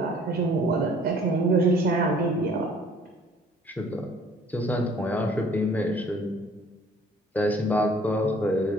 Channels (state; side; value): normal; both; correlation 0.55